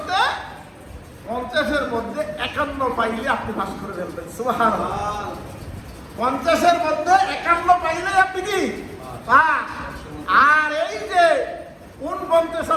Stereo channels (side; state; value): both; identical; correlation 1.00